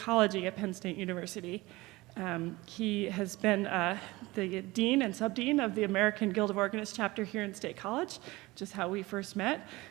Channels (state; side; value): quieter; left; 20.8 dB